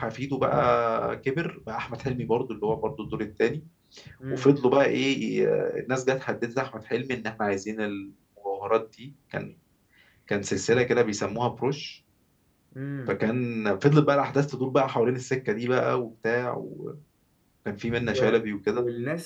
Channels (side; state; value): both; identical; correlation 1.00